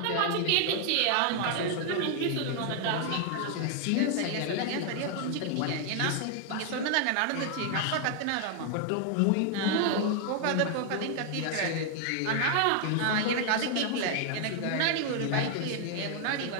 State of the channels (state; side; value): different; both; correlation 0.00